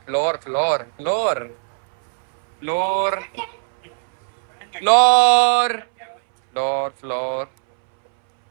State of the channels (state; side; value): silent; left; 65 dB below the other